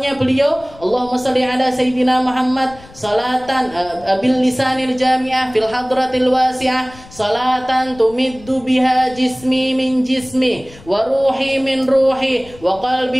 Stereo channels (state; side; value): noise; left; rumble, 22 dB below the sound